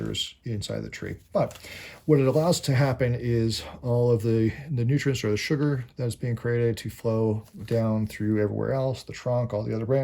inside the tree. But what it allows to happen is all of the nutrients or the sugar that is being created to flow down through everywhere else, the trunk, all the other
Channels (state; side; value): identical; both; correlation 1.00